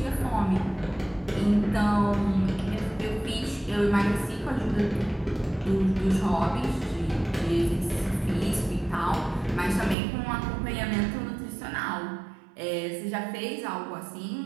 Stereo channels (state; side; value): drops out; left; at 10.0 s